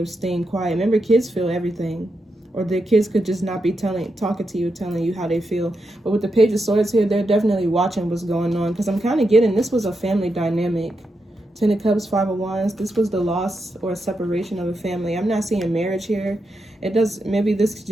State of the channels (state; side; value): normal; both; correlation 0.85